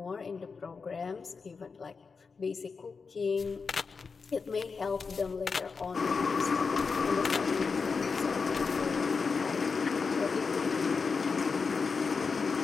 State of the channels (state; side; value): quieter; right; 5.0 dB